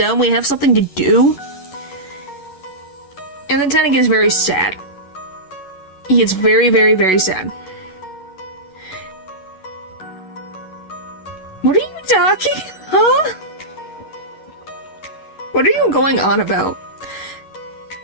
We have something to do. And then Tenna gets very sad. He gets very, very, very sad. What are you talking? Huh? What are you going on about?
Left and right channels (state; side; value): late; right; 11 ms